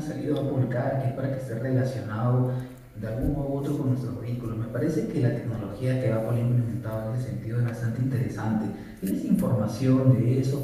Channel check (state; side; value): identical; both; correlation 1.00